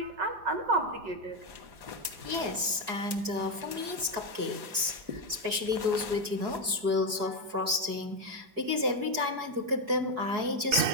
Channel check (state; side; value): late; left; 4.7 ms